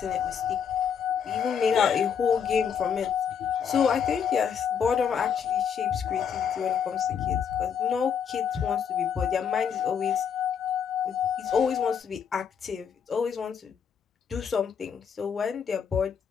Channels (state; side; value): quieter; right; 7.5 dB